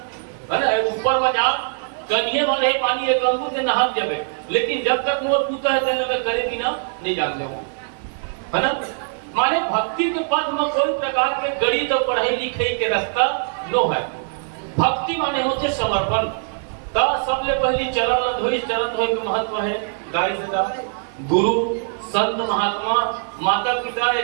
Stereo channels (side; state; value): left; silent; digital silence